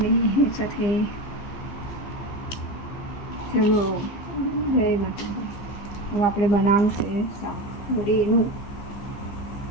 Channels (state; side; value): late; right; 15 ms